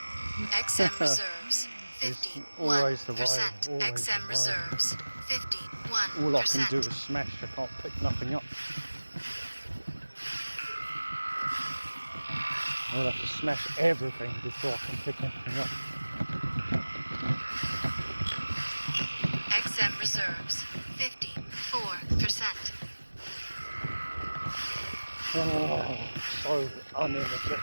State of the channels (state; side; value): inverted; both; correlation -1.00